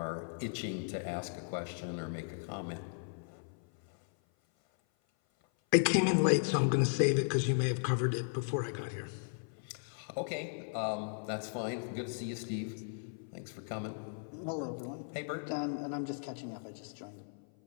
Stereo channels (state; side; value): silent; right; 54 dB below the other